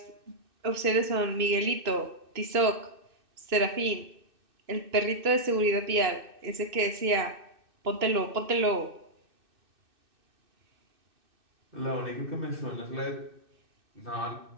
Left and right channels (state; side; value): late; left; 2.6 ms